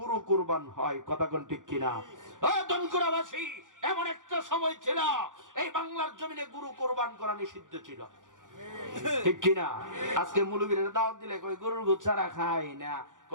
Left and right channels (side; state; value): left; late; 0.87 ms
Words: কুরবান হয়। কথা কোন ঠিক কিনা? ও দনকুরাবাসী, এমন একটা সময় ছিল এই বাংলার জমিনে গরু কুরবান করা নিষিদ্ধ ছিল। ঠিক কিনা? আজকে মুলুবিরা দাওয়াত দিলে কই গরুর গোশত ছাড়া খায় না,